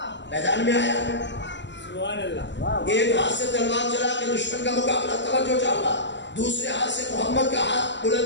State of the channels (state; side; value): late; right; 0.52 ms